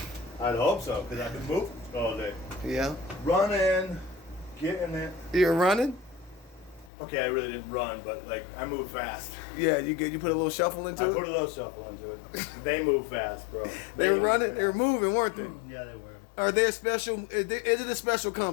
I'd hope so, because I've been moving all day. Yeah. Running, getting it. You're running? Okay, I really didn't run, but like I move fast. Yeah, you put a little shuffle into I it? put a little shuffle into it. They move fast, bro. They were running? They were moving, weren't they? Yeah, they were. Are they a special, is it a special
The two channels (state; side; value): drops out; right; at 6.9 s